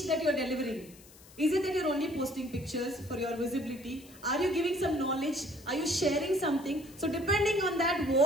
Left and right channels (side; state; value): left; noise; hiss, 22 dB below the sound